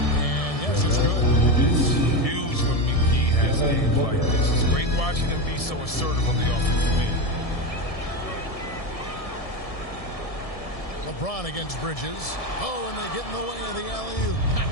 And yes, it's good. It's huge when McGee has games like this. It's great watching him be so assertive on the offensive end. LeBron against Bridges. Oh, and they get in the way of the alley-oop. Not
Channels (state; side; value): late; right; 1.7 ms